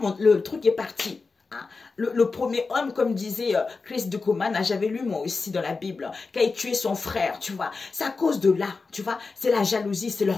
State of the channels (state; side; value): quieter; right; 4.2 dB